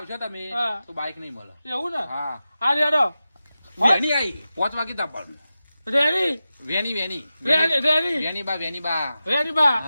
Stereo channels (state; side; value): inverted; both; correlation -0.93